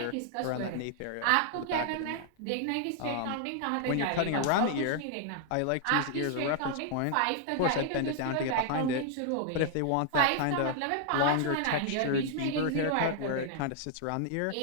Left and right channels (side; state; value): both; different; correlation 0.00